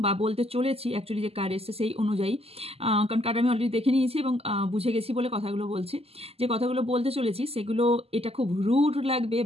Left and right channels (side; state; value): left; late; 0.29 ms